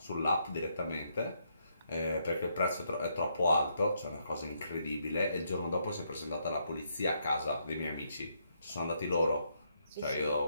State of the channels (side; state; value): both; inverted; correlation -0.75